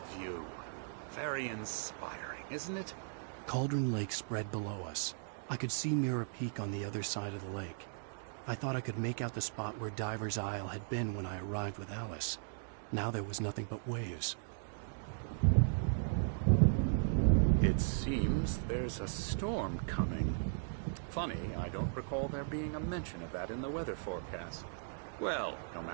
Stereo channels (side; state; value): left; silent; digital silence